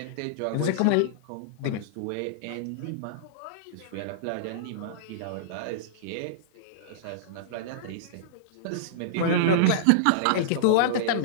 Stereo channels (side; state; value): both; different; correlation -0.02